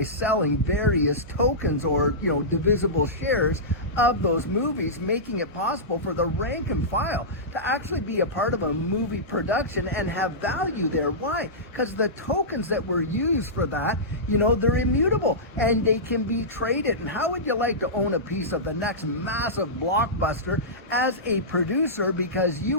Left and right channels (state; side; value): normal; both; correlation -0.16